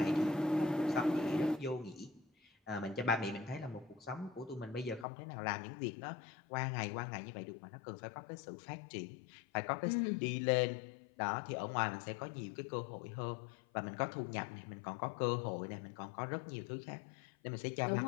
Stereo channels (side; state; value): right; drops out; at 5.1 s